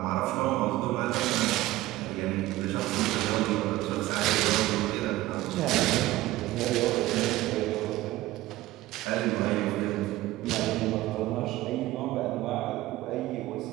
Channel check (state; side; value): quieter; left; 17.0 dB